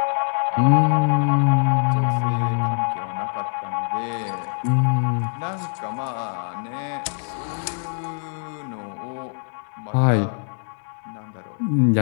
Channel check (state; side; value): silent; right; digital silence